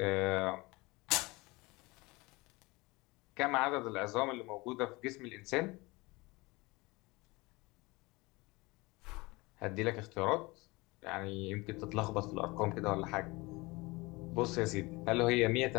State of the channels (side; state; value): right; quieter; 23.6 dB